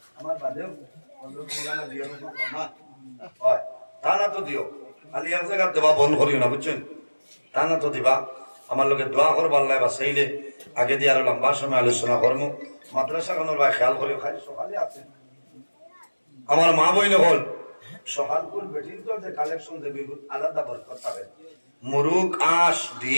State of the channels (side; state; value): both; inverted; correlation -1.00